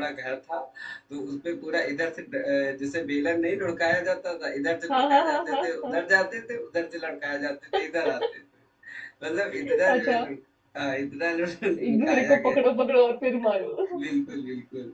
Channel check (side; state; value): both; identical; correlation 1.00